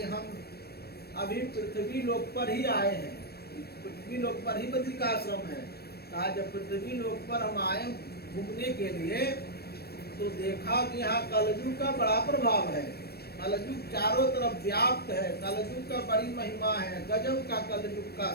हम अभी पृथ्वी लोक पर ही आए हैं, पृथ्वी लोक पर ही बद्रिकाश्रम है। कहा जब पृथ्वी लोक पर हम आए घूमने के लिए तो देखा कि यहाँ कलयुग का बड़ा प्रभाव है, कलयुग चारों तरफ व्याप्त है, कलयुग का बड़ी महिमा है, गजब का कलयुग का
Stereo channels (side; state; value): right; late; 0.46 ms